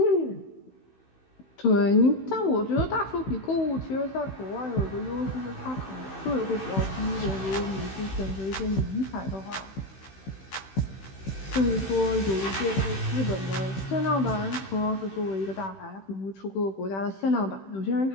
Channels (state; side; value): late; right; 16 ms